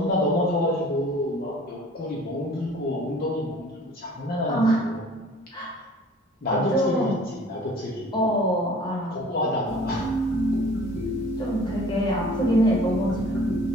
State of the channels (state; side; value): normal; both; correlation 0.49